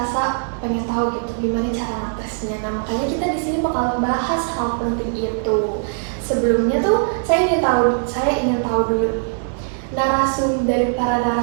pengen tahu gitu gimana cara ngatesnya. Nah, makanya kita di sini bakal bahas hal penting itu. Sebelumnya tuh saya ingin tahu dulu dari para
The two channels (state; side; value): silent; left; 59 dB below the other